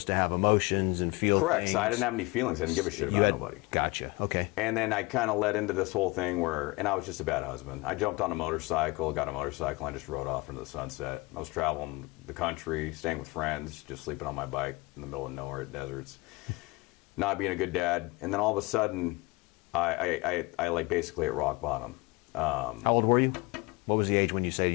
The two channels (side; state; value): right; quieter; 24.0 dB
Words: to have emotions and feel Correct. things. So I didn't have any feelings. I didn't give a shit about nobody. Gotcha. Okay. And then I kind of led into this whole thing and I was just a bad husband. I jumped on a motorcycle, got a motorcycle, and I just rode off into the sunset. I was traveling the country, staying with friends, just sleeping on my bike in the middle of nowhere at deserts, not being a good dad. And then all of a sudden, I basically at rock bottom. How old were you? What was the age when you say